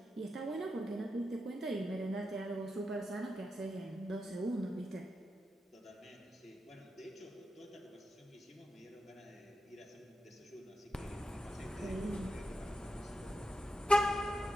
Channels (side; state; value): both; normal; correlation 0.87